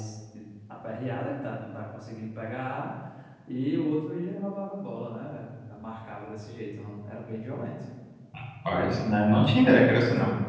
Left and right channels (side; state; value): both; identical; correlation 1.00